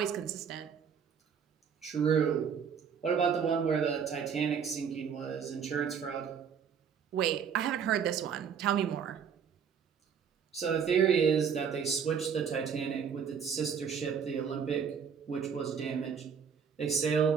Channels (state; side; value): quieter; left; 7.0 dB